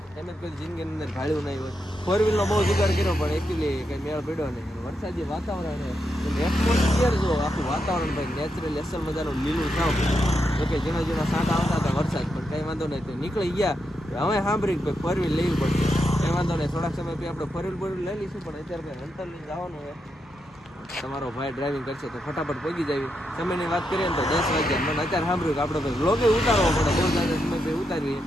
એમ જ કોઈ જિંદગીની અંદર ભાડ્યું નહીં હોય. ફોર વ્હીલનો બહુ જુગાડ કર્યો પણ એકચ્યુઅલી કંઈ મેળ પડ્યો નહીં. વરસાદી વાતાવરણ એટમોસ્ફિયર જો આખું વાતાવરણ ભાઈ નેચરલી અસલ મજાનું લીલું થાવ. તો કે ઝીણા ઝીણા સાંટા આવતા હતા વરસાદ, પણ કંઈ વાંધો નહીં. તો નીકળી ગયા હવે સાંભળી ભાઈ ફોર વ્હીલ લેવી પડશે. કંઈ વાંધો નહીં, થોડાક સમય પછી આપણે ફોર વ્હીલ લઈ લઈશું. પણ અત્યારે ભાઈ હન્ટર લઈને જવાનું હોય. તમારો ભાઈ ડ્રાઇવિંગ કરશે તો ફટાફટ પહોંચી જાય. સમયની વાત કરીએ ને તો 10 વાગ્યા. મને અત્યારે સાંભળ્યું કે આપણે ભાઈ વ્લોગે ઉતારવો પડે, બહુ જ્યાદા સમય ભાઈ ઉતારીએ.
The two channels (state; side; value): normal; both; correlation 0.83